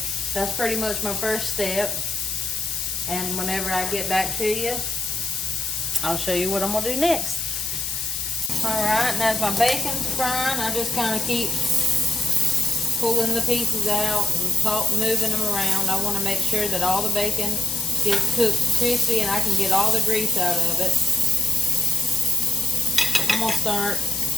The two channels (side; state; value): left; noise; hiss, 3 dB below the sound